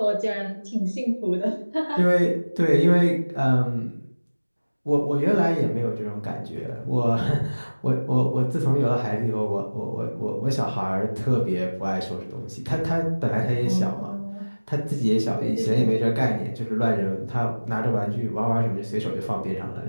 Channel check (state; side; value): inverted; both; correlation -1.00